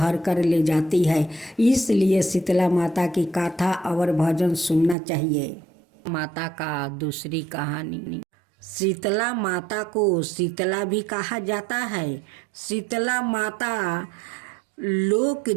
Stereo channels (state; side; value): drops out; left; at 5.0 s